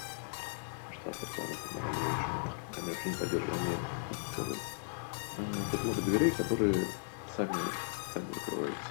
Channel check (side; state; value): right; silent; digital silence